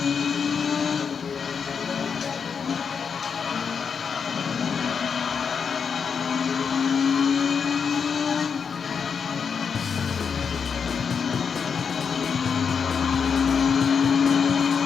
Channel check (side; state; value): right; quieter; 6.3 dB